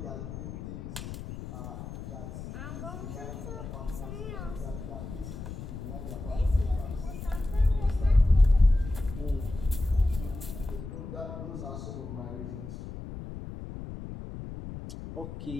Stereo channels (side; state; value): left; noise; rumble, 9 dB below the sound